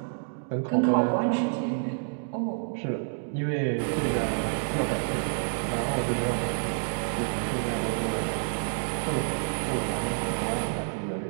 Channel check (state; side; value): silent; left; digital silence